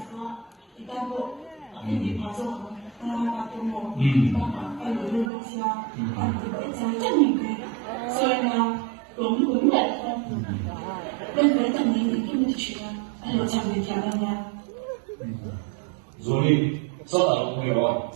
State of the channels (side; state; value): left; drops out; at 5.3 s